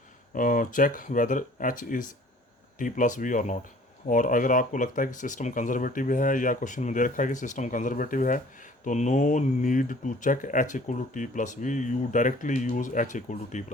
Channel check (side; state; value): both; normal; correlation 0.52